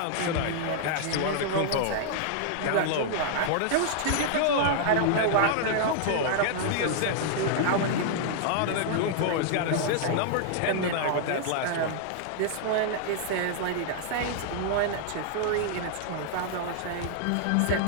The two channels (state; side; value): different; both; correlation -0.01